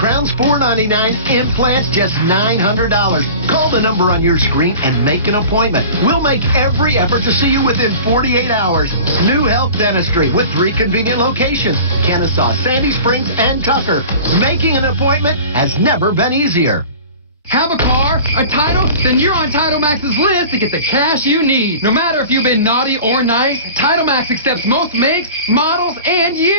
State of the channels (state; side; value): inverted; both; correlation -0.40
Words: $499, implants just $900. Call the number on your screen and make an appointment. We'll make every effort to see you within 48 hours. New Health Dentistry with 3 convenient locations: Kennesaw, Sandy Springs, and Tucker. Making an appointment has never been easier. Have a car, a title? Then you're on Title Max's list to get the cash you need. No matter if you've been naughty or nice, Title Max accepts most makes, models, and